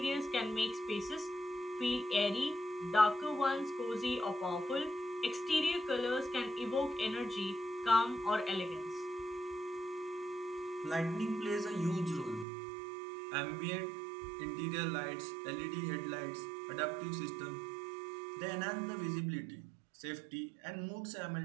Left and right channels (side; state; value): left; drops out; at 12.5 s